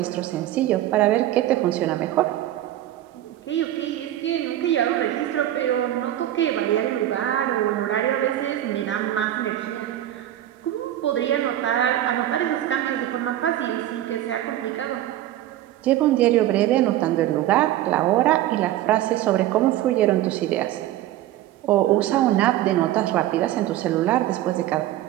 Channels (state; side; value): quieter; left; 13.3 dB